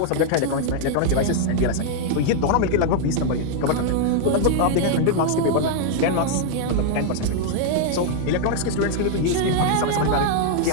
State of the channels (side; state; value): both; different; correlation 0.00